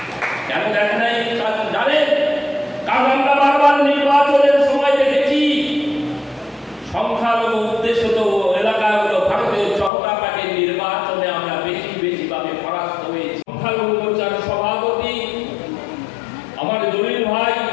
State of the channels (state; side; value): drops out; right; at 9.9 s